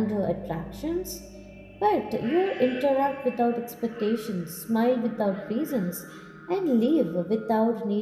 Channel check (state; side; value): identical; both; correlation 1.00